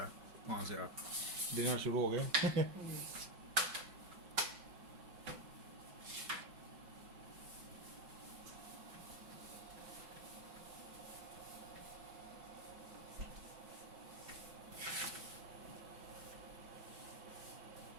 है वहाँ से। आप डिनर शुरू हो गए।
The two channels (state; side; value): late; left; 5.3 ms